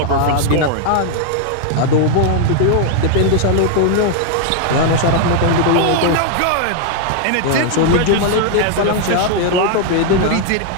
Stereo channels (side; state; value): both; different; correlation 0.00